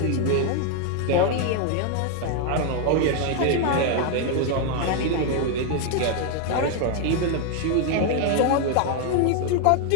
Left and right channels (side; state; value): both; different; correlation 0.01